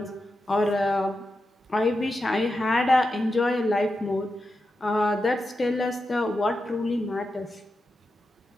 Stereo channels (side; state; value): both; normal; correlation 0.89